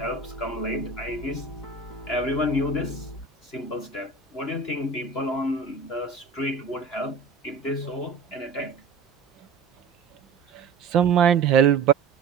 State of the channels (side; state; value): left; quieter; 4.7 dB